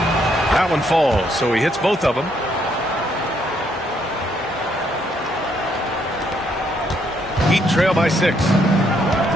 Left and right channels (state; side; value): normal; both; correlation 0.72